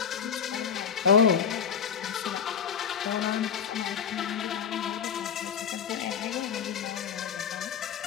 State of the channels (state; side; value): quieter; right; 7.4 dB